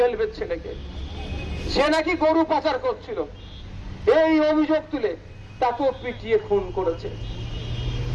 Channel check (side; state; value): both; identical; correlation 1.00